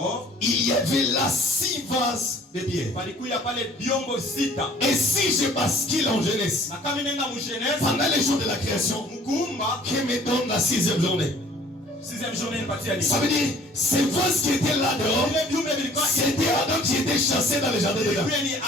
il y avait là 6 vases de pierre. Et si je bascule en jeunesse, pendant les jours de la création, qui me donne la 6e journée. Ça veut dire, ces vases qui étaient là dehors, c'était Adam qui était chassé dans le jardin de Dieu.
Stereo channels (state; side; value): normal; both; correlation 0.54